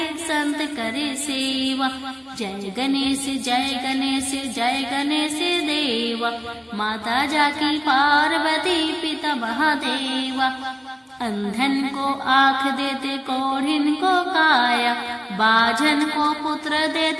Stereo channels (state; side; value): identical; both; correlation 1.00